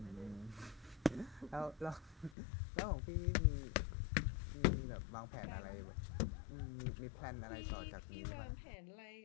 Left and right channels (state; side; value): drops out; right; at 2.4 s